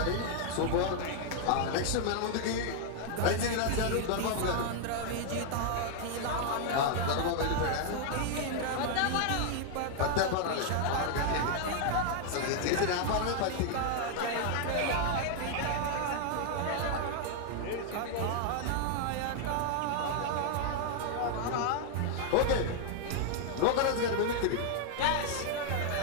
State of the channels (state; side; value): different; both; correlation 0.00